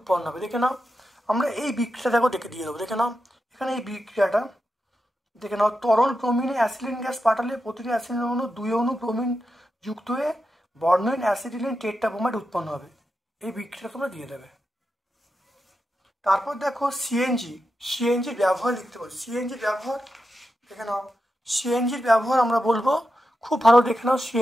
হবে। দেখে নাও, আমরা এই বিক্রিয়া দেখো দিয়ে দেবো। দেখে নাও এখানে এই বিক্রিয়াটা দেখে নাও, তরল ব্রোমিনে অ্যাসিডিলিন গ্যাস পাঠালে প্রতিটি অ্যাসিডিন অণু 2 অণু ব্রোমিন যুক্ত হয়ে বর্ণহীন অ্যাসিডিলিন টেট্রাব্রোমাইড উৎপন্ন হবে। এই বিক্রিয়া তোমরা দিয়ে দেবে। তারপর দেখো সিএনজির ব্যবহার লিখতে পারি। সিএনজির ব্যবহার দেখে নাও, সিএনজির ব্যবহার আমরা বলবো, খুব ভালো দেখে নাও,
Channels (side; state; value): both; normal; correlation 0.88